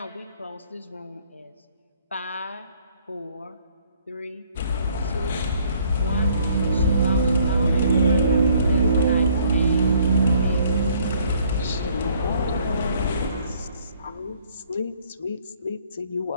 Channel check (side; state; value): both; inverted; correlation -0.61